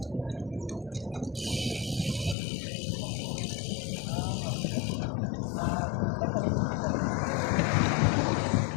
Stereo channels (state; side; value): drops out; right; at 2.4 s